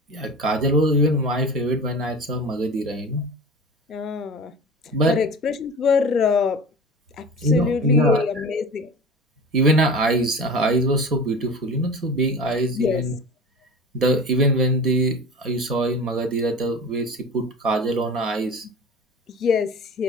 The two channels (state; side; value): normal; both; correlation 0.35